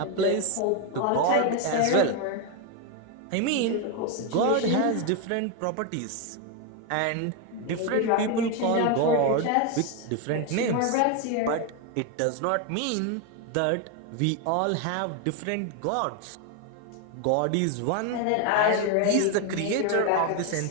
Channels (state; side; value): different; both; correlation 0.01